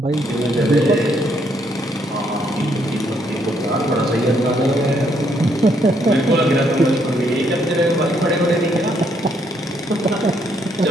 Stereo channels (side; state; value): both; normal; correlation 0.72